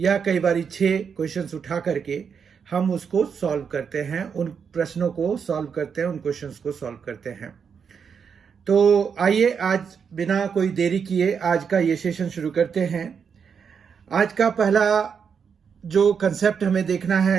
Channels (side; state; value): left; quieter; 6.6 dB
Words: कई बारी 6 क्वेश्चंस उठा करके हम उसको सॉल्व करते हैं, उन प्रश्नों को सॉल्व करते हैं, उन क्वेश्चंस को सॉल्व करते हैं। तो आइए आज बिना कोई देरी किए आज का ये सेशन शुरू करते हैं। आज का पहला जो कंसेप्ट हमें देखना